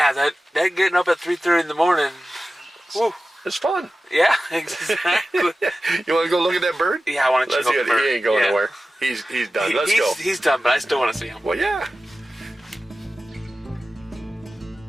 that getting up at 3:30 in the morning. Woo. It's fun. Yeah, exactly. You want to go look at that bird? Yeah, I want to Let's check see out it. the bird. He ain't going Yeah. nowhere. He's done. Let's go. He's done, but I still want to see him. Well, yeah.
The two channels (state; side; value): normal; both; correlation 0.95